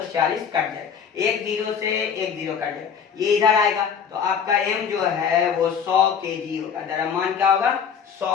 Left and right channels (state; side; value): quieter; right; 7.2 dB